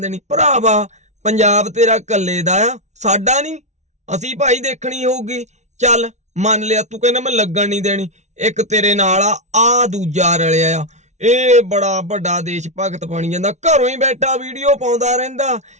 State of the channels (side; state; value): left; late; 0.33 ms